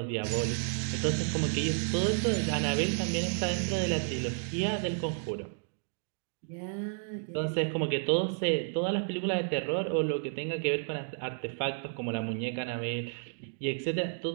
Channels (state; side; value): silent; left; digital silence